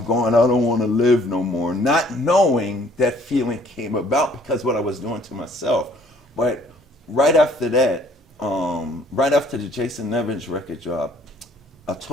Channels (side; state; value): both; normal; correlation 0.59